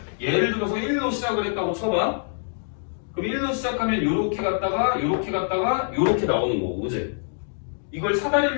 예를 들어서 1로 시작을 했다고 쳐봐. 그럼 1로 시작하면 요렇게 갔다가 요렇게 갔다가 요렇게 나오는 거고 그지? 이걸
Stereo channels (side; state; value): right; silent; digital silence